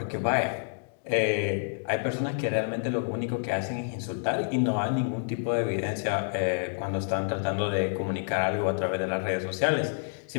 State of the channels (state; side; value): silent; right; digital silence